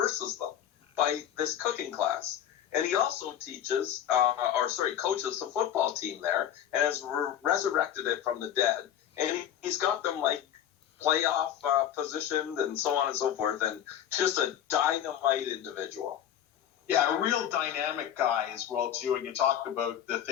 them by this cooking class. And he also teaches, coaches the football team there and has resurrected it from the dead. And he's got them like playoff positioned and so on and so forth. And just a dynamite individual. Yeah, a real dynamic guy as well, too. And you talked about the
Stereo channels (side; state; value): right; quieter; 10.4 dB